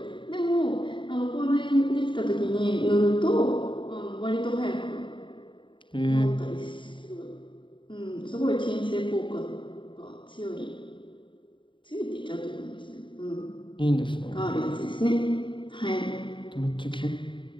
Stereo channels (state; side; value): late; right; 0.24 ms